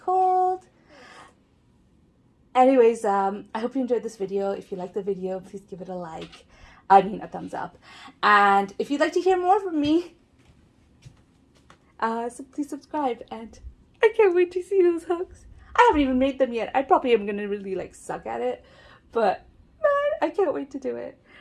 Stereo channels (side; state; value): both; identical; correlation 1.00